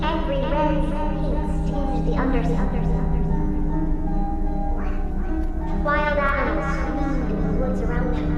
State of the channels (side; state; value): both; identical; correlation 1.00